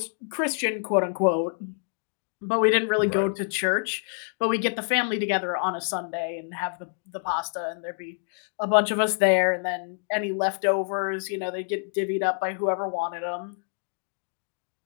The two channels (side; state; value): right; silent; digital silence